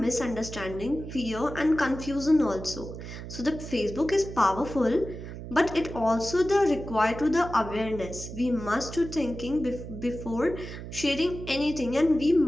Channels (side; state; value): right; noise; hum, 10 dB below the sound